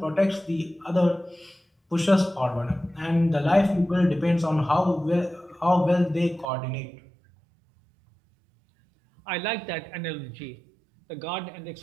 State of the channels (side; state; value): left; drops out; at 6.5 s